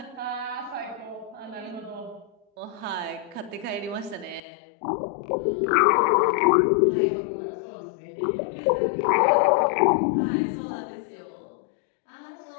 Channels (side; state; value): right; drops out; at 4.4 s